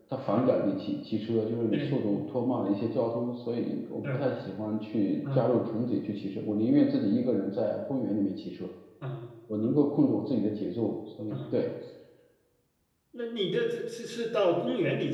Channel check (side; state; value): both; identical; correlation 1.00